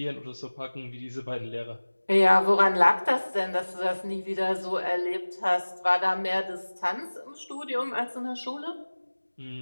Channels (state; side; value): inverted; both; correlation -1.00